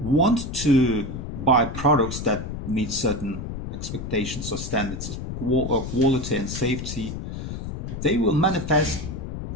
to buy products that meet certain expectations or standards of quality and safety, they will manifest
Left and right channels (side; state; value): left; noise; rumble, 7 dB below the sound